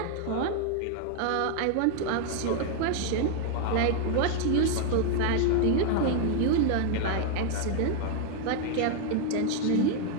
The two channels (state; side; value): different; both; correlation 0.00